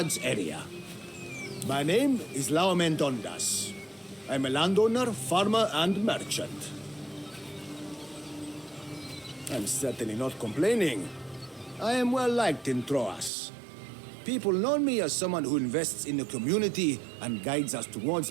area. My name is Laomen Dondas. I'm a landowner, farmer, and merchant. I'm certainly not complaining. I am well liked in Troas. People know me as someone who invests in the community and guides us towards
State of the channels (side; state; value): left; drops out; at 13.3 s